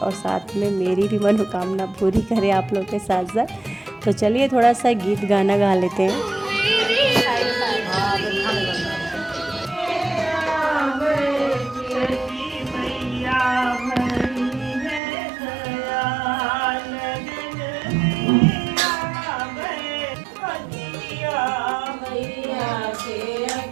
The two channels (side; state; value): left; drops out; at 15.0 s